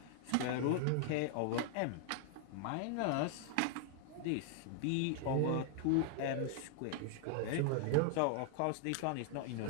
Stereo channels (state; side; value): different; both; correlation 0.00